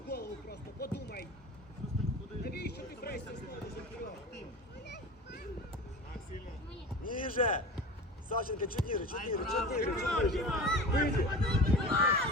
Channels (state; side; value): normal; both; correlation 0.33